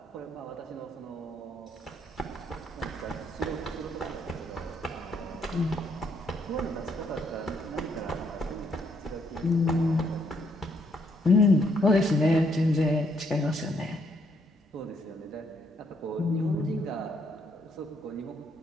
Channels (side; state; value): both; normal; correlation 0.72